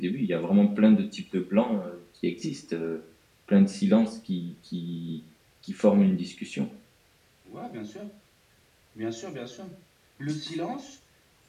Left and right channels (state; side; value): identical; both; correlation 1.00